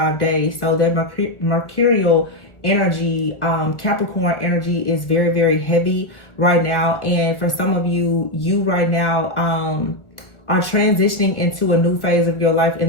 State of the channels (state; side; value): late; right; 1.4 ms